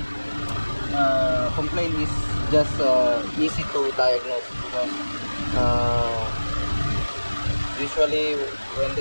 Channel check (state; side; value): inverted; both; correlation -1.00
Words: complaint is just easy to diagnose, because usually when